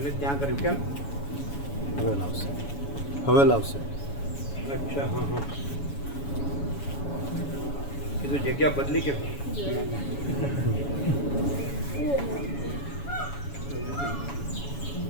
ત્યાં કર્યું કેમ? હવે લાવશે. હવે લાવશે. અચ્છા હા હા કીધું જગ્યા બદલી કેમ?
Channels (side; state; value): right; late; 7.1 ms